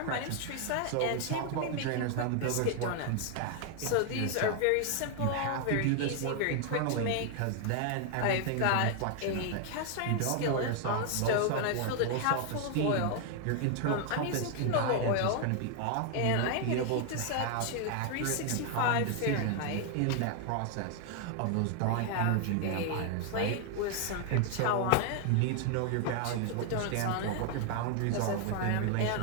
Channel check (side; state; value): both; different; correlation 0.00